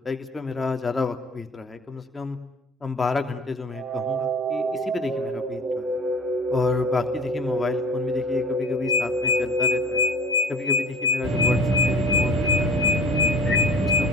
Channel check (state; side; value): normal; both; correlation 0.43